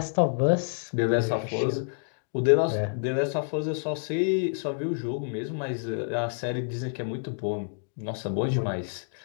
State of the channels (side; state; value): right; silent; digital silence